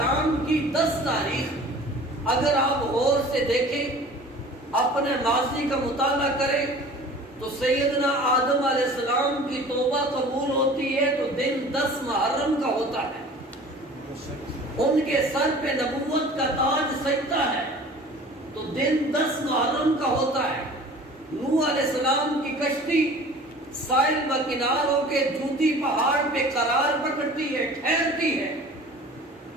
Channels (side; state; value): both; normal; correlation 0.44